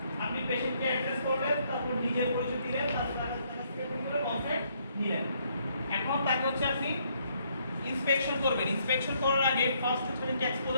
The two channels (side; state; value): both; inverted; correlation -0.70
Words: আপনি পেশেন্টকে অ্যাড্রেস করলেন, তারপর নিজের পরিচয় দিলেন, তারপর তার কাছ থেকে কনসেপ্ট নিলেন। এখন তাকে হচ্ছে আপনি ইন্সপেকশন করবেন। ইন্সপেকশন করার আগে ফার্স্ট হচ্ছে